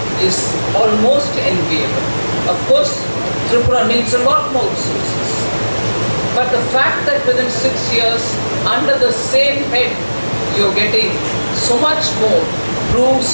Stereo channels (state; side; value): inverted; both; correlation -1.00